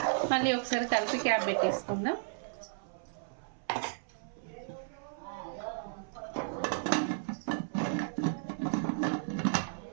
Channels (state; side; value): silent; left; 55 dB below the other